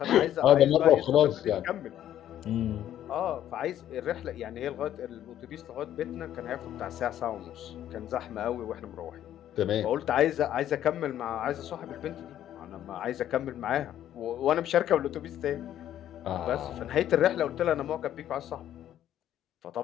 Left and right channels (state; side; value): quieter; right; 11.4 dB